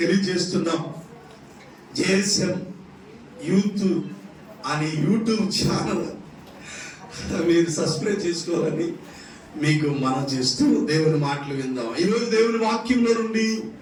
తెలియజేస్తున్నాం. జేఎస్ఎం యూత్ అనే యూట్యూబ్ ఛానల్ మీరు సబ్స్క్రైబ్ చేసుకోవాలని మీకు మనం చేస్తూ దేవుని మాటలు విందాం. ఈరోజు దేవుని వాక్యంలో నుండి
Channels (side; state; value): both; identical; correlation 1.00